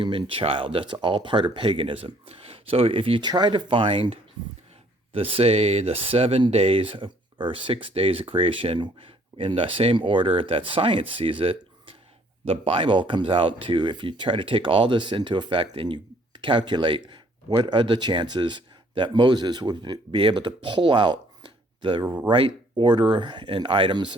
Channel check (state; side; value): normal; both; correlation 0.62